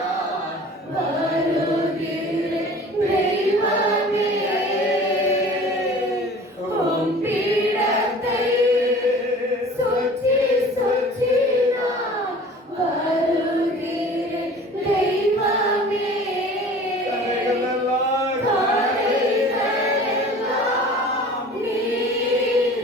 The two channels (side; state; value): both; normal; correlation 0.44